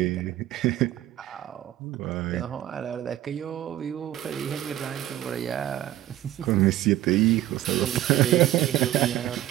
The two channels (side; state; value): left; quieter; 13.8 dB